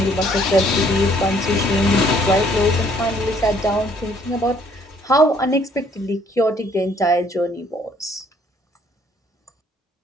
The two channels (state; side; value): normal; both; correlation 0.63